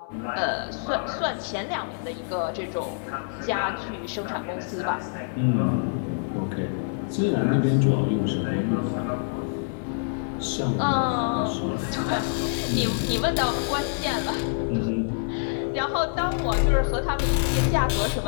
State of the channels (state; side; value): silent; right; 58 dB below the other